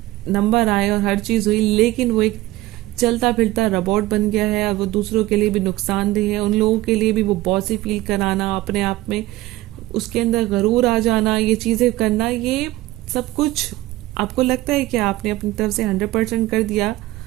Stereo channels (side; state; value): left; quieter; 17.6 dB